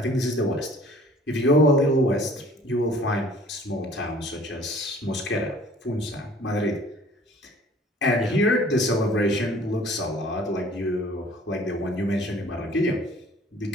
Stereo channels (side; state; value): both; normal; correlation 0.51